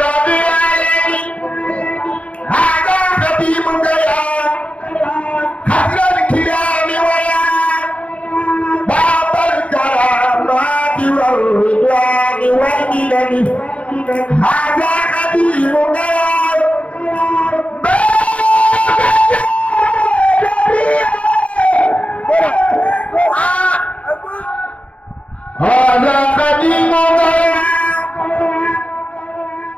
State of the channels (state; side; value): late; right; 0.065 ms